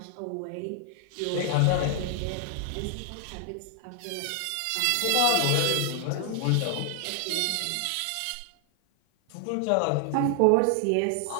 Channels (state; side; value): different; both; correlation 0.00